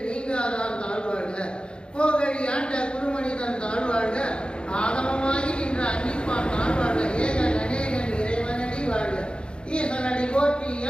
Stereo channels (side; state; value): right; late; 0.053 ms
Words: நீங்காதான் தாழ்வாழ்க. கோகழி ஆண்ட குருமனிதன் தாழ்வாழ்க, ஆகமமாகி நின்ற அன்னிப்பான் தாழ்வாழ்க. ஏகன் அநேகன் இறைவனடி வாழ்க. ஈசனடி போற்றி,